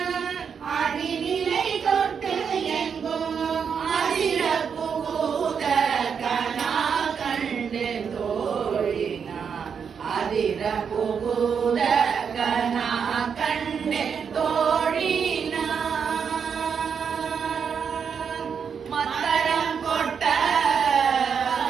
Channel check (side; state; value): left; quieter; 6.7 dB